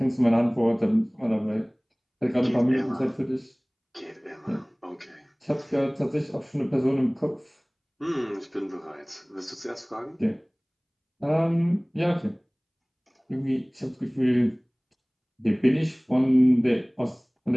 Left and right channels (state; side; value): identical; both; correlation 1.00